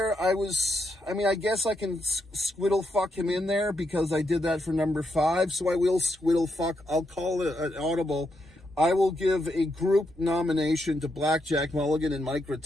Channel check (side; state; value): both; normal; correlation 0.81